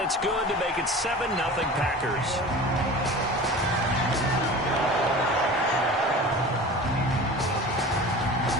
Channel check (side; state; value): both; normal; correlation 0.37